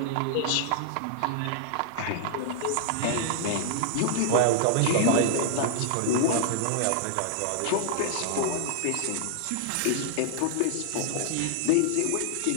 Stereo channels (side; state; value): both; different; correlation 0.00